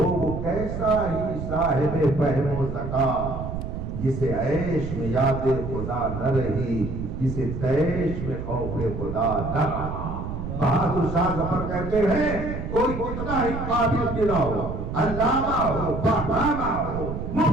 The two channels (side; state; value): right; noise; rumble, 6 dB below the sound